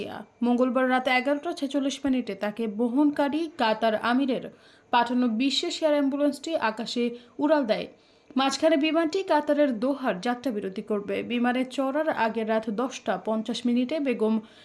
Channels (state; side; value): identical; both; correlation 1.00